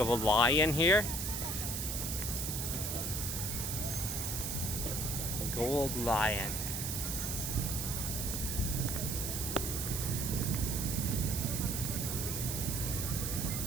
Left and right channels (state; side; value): noise; right; hiss, 2 dB below the sound